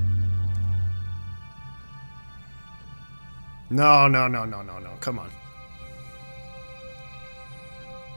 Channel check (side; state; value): both; inverted; correlation -1.00